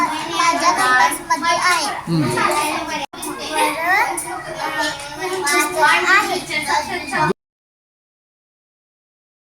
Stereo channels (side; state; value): both; identical; correlation 1.00